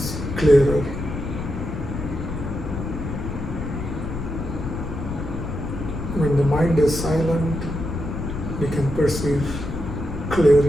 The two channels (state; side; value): noise; left; rumble, 5 dB below the sound